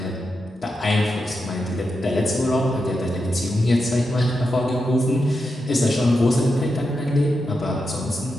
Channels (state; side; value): normal; both; correlation 0.87